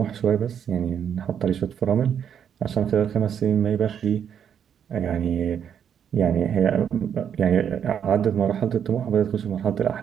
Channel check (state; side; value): quieter; left; 8.4 dB